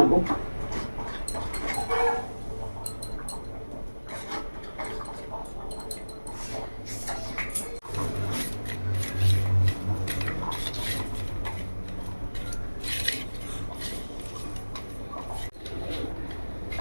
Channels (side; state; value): both; inverted; correlation -1.00